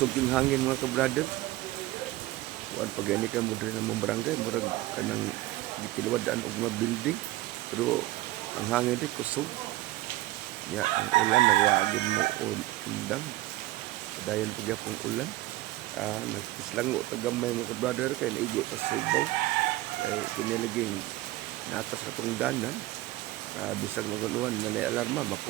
yung hangin mga kabrader. Kuan pag ani ka mo diri sa mong barangay, murag kanang gitiluwadaan og mga building. Pero ang hangin rin kusog. Ya, ang ulan nagwagid mo undang. Dayon pagyapong ulan. Nagpislango tagamay mga brother kay naigo ta Subaw kay kinilaging natas katong danan. Bisag maguluhan na may alarma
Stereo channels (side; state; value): left; quieter; 17.4 dB